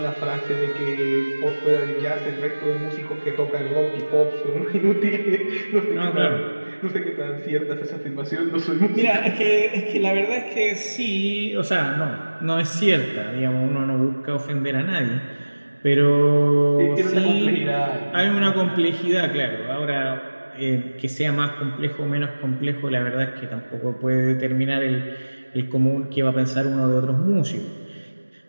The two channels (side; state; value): both; inverted; correlation -1.00